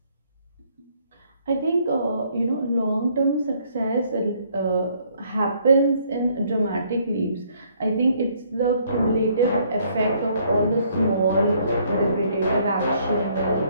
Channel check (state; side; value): inverted; both; correlation -0.66